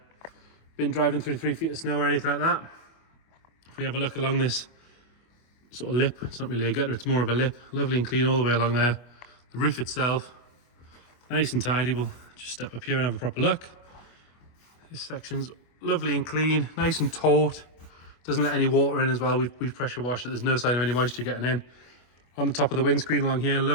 been driving through 3 feet of snow or anything like that. If we have a look along this sort of lip, it's not really a gutter, it's more of a lip, lovely and clean all the way along there. The roof itself, nice and tidy. We'll just step up here and have a proper look. This section's lovely and clean, nice and taut. Doesn't let any water in as well. We've pressure washed it. There's no sign of any moisture getting in. On the top of the windscreen along here,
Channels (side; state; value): right; late; 25 ms